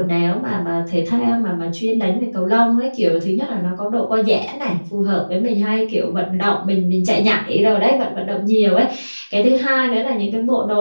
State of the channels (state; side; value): inverted; both; correlation -1.00